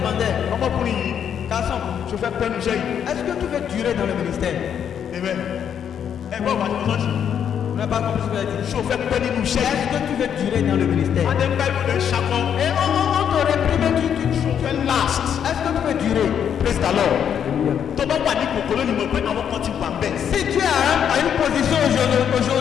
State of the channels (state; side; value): quieter; right; 8.5 dB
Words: ọmọkùnrin yìí garçon, ṣe fẹ́ pẹ́ níṣẹ́ yìí. est-ce que tu veux durer dans le ministère? Amen. ẹ gbọ́ bàbá tó lọ́sí. On n'a pas compris ce qu'il a dit. ṣé o fẹ́ pẹ́ nínú iṣẹ́ yìí. Est-ce que tu veux durer dans le ministère? adé ń bá ìwé ṣakọ. Et on te réprime, tu fẹ́ last. est-ce que tu veux durer? praise the lord. tó bá wà ní kòkòrò ni mo pé àwọn kan ti wà bẹ́ẹ̀. Si tu es à une position